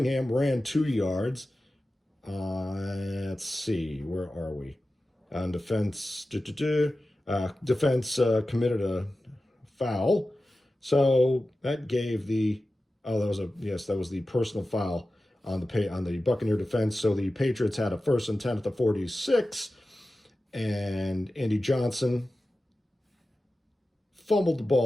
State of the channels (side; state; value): both; normal; correlation 0.94